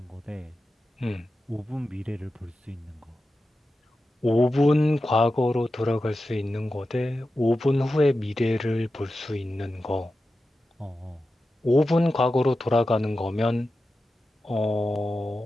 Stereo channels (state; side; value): normal; both; correlation 0.92